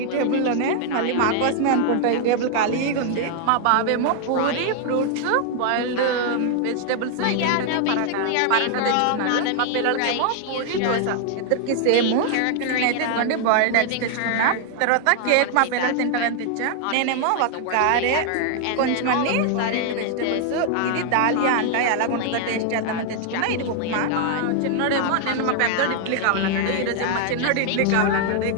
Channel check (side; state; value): both; different; correlation 0.00